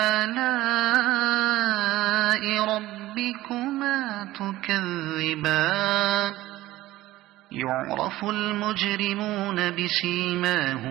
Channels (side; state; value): left; quieter; 16.4 dB